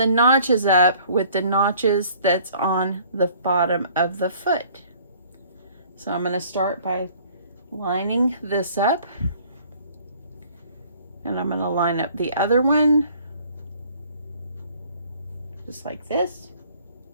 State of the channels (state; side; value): inverted; both; correlation -0.55